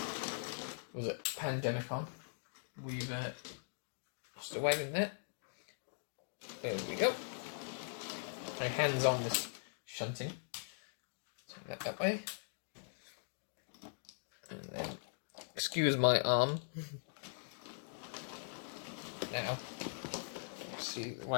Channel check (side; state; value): right; silent; digital silence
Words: was it pandemic on? We've lost a wagon there. There we go. My hands on this shunting. Turn that way. And then, excuse my arm. Now, see the